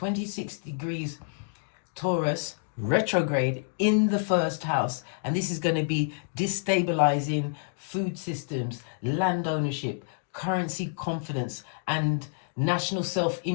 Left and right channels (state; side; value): silent; right; digital silence